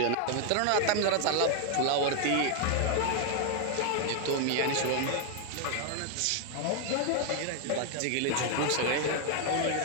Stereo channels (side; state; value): both; different; correlation 0.00